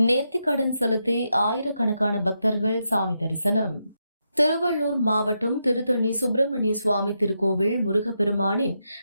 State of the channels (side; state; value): both; inverted; correlation -0.84